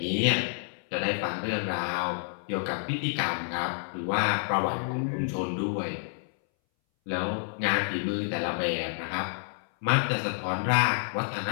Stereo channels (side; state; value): right; silent; 59 dB below the other